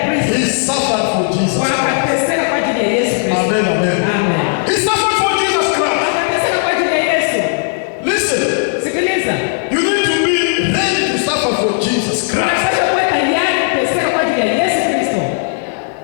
prison. He suffered for Jesus. Wakateseka kwa ajili ya Yesu Kristo. Amen, amen. Amen. He suffered for Jesus Christ. Wakateseka kwa ajili ya Yesu. Listen, Sikiliza. you need to be ready to suffer for Jesus Christ. Unapaswa kuwa tayari kuteseka kwa ajili ya Yesu Kristo.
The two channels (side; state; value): right; silent; digital silence